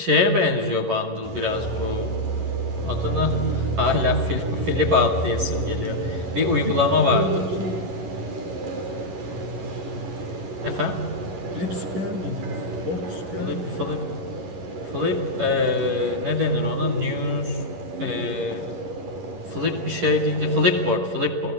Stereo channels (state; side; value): late; left; 11 ms